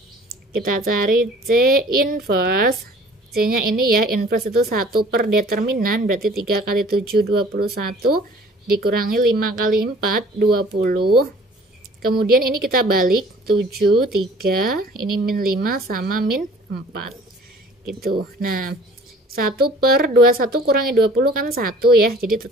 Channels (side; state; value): both; normal; correlation 0.51